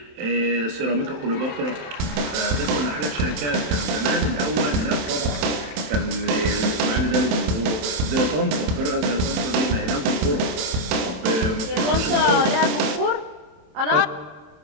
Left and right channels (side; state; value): left; late; 27 ms